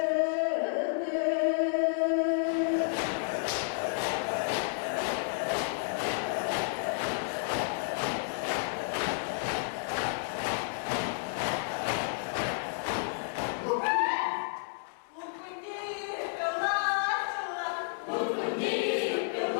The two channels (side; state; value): right; silent; digital silence